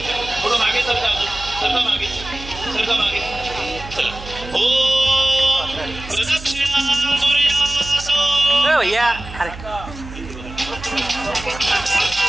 थोडं मागे सरका मागे चला. ओ प्रदक्षिणा भैया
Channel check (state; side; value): noise; right; hum, 13 dB below the sound